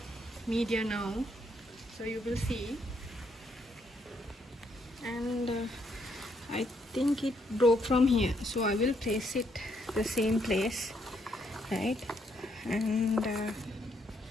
media now, so you will see. And I think it broke from here, so I will place it the same place, right? And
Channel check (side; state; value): both; normal; correlation 0.73